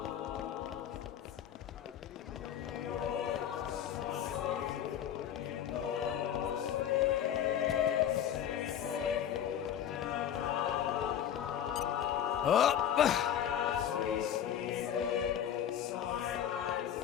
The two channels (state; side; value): quieter; right; 9.8 dB